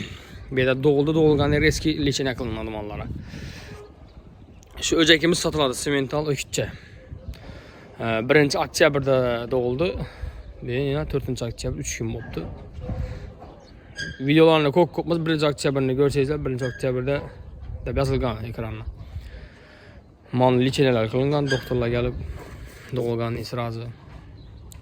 Bu yerda doğulgan eski lichene qilinadi mollara. Şu öcekimiz satıldı simental ökütçe. 1 oktyabrda doğuldu. Yine 4 oktyabr 3 gün oldu. Videolarını kopmaz 1 oktyabrını görseniz 1 oktyabrda da yazılgan ekranına. Mal liçeneler kılıngan, doktorlar gelip doğulgan israzı.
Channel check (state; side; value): identical; both; correlation 1.00